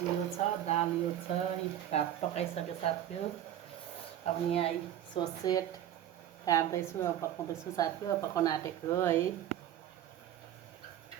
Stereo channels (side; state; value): left; quieter; 11.4 dB